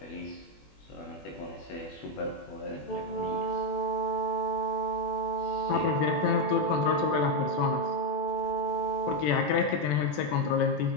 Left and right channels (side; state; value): right; late; 20 ms